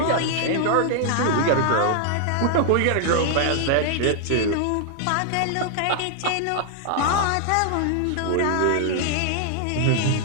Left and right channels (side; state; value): both; different; correlation 0.00